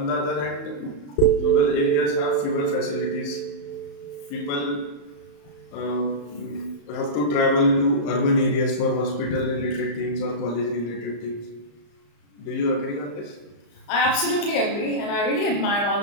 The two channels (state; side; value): late; right; 34 ms